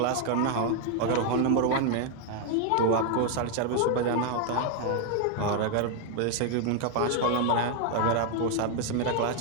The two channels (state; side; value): different; both; correlation 0.01